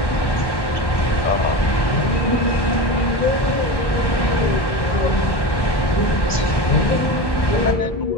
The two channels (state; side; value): late; right; 1.1 ms